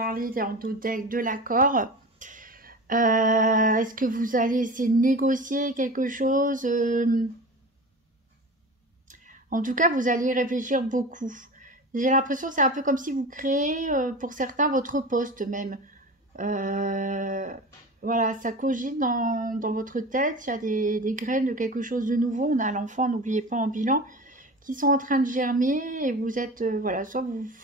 dans le deck de l'accord? Est-ce que vous allez essayer de négocier quelque chose? En tout cas, vous allez y réfléchir beaucoup. J'ai l'impression que c'est un peu comme si vous créez, pour certains, votre poste même. Voilà, ça cogite dans votre tête. Il y a des graines de quelque chose de nouveau. On a l'enfant, n'oubliez pas, en bilan, qui sont en train de germer. Et vous êtes, voilà, soit vous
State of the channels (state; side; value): normal; both; correlation 0.33